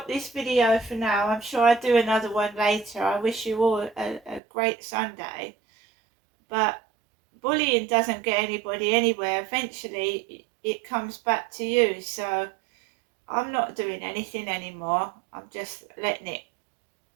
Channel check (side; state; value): left; drops out; at 4.4 s